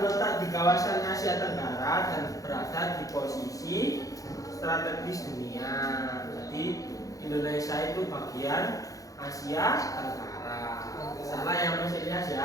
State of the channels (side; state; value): right; late; 0.17 ms